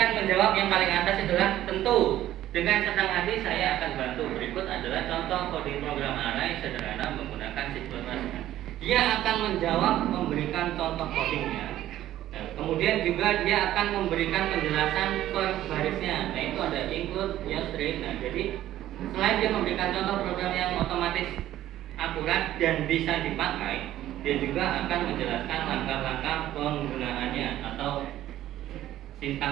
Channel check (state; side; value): quieter; left; 13.4 dB